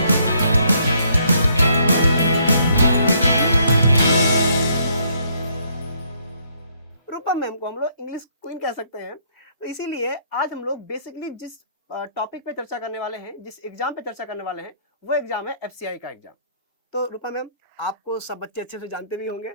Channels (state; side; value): inverted; both; correlation -0.68